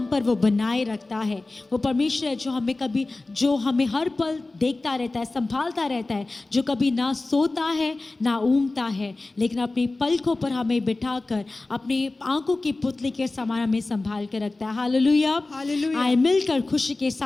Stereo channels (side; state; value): right; quieter; 3.2 dB